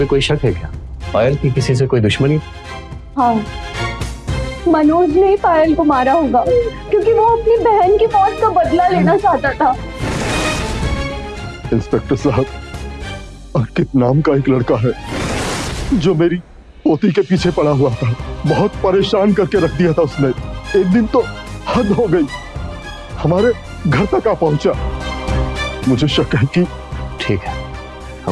कोई शक है क्या? पायल की किसी से कोई दुश्मनी? हाँ, मनोज ने ही पायल को मारा होगा क्योंकि वो अपनी बहन की मौत का बदला लेना चाहता था। इंस्पेक्टर साहब, अंकित नाम का एक लड़का है जो मेरी पोती के पीछे पड़ा हुआ था। बहुत परेशान करके रख दिया था उसने। एक दिन तो हद हो गई, हमारे घर तक आ पहुंचा। मुझे शक है कि ठीक है,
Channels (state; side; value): identical; both; correlation 1.00